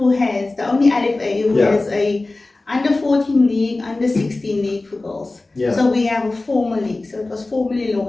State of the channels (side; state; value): right; quieter; 3.1 dB